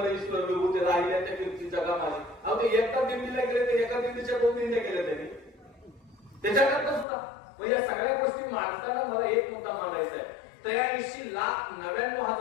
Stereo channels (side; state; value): right; drops out; at 7.1 s